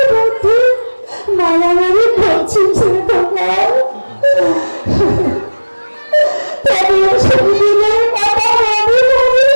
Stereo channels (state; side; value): inverted; both; correlation -1.00